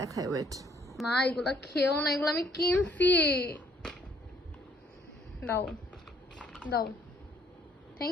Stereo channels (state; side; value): normal; both; correlation 0.65